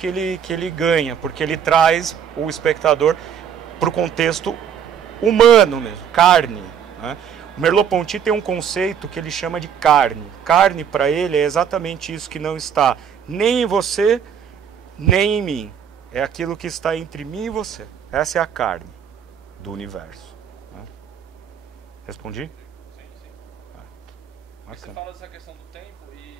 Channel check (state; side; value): quieter; left; 8.2 dB